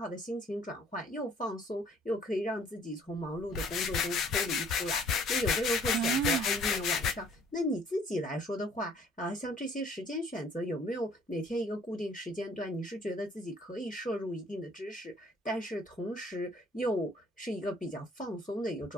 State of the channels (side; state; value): both; normal; correlation 0.58